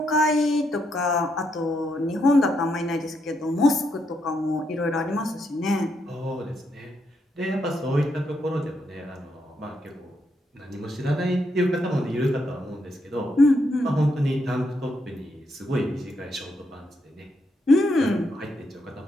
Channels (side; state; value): both; normal; correlation 0.79